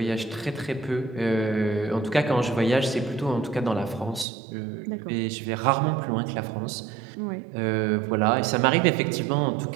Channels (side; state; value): left; drops out; at 4.2 s